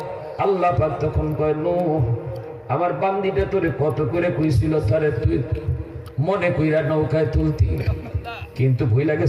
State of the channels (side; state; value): both; identical; correlation 1.00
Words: আল্লাহ পাক তখন কয় নূহ আমার বান্দিটা তোরে কত করে কইছিল তারে তুই মনে কইরা নৌকায় তুলতি, কিন্তু ভুইলা